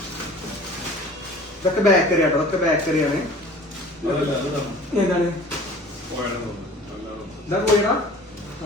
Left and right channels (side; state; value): both; normal; correlation 0.45